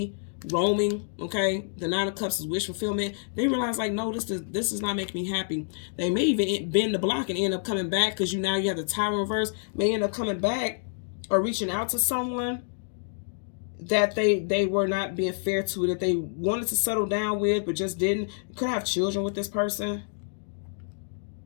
roaming, okay? The 9 of Cups is wish fulfillment. They realized like, no, this is not making me happy. They may even bend the block and end up coming back because you have the Tower reverse. May end up coming back or reaching out to someone that they were not being fair to, that they wanted to settle down with but just didn't. You could have children with this person.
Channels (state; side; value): silent; right; digital silence